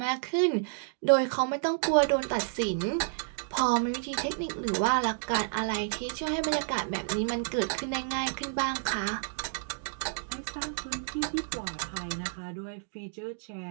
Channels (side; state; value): left; silent; digital silence